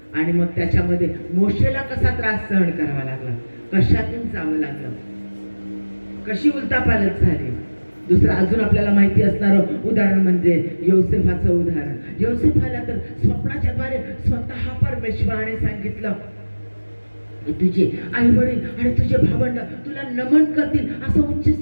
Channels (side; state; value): both; inverted; correlation -1.00